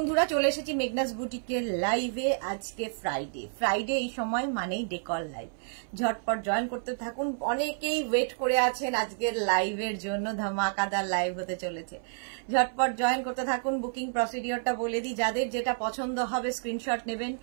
চলে এসেছি মেঘনাস বুটিকের লাইভে। আজকে ফ্রাইডে এই সময় মানেই ডেকর লাইভ। ঝটপট জয়েন করতে থাকুন। অনেকেই ওয়েট করে আছেন আজকের লাইভের জন্য, ধামাকাদার লাইভ হতে চলেছে। ঝটপট জয়েন করতে থাকুন। বুকিং প্রসিডিওরটা বলে দিই, যাদের যেটা পছন্দ হবে স্ক্রিনশট নেবেন,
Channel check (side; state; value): left; silent; 58 dB below the other